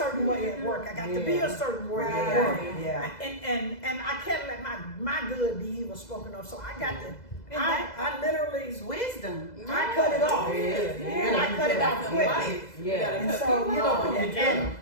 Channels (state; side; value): late; right; 2.0 ms